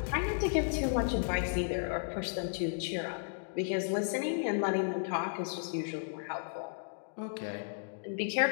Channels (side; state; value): right; silent; digital silence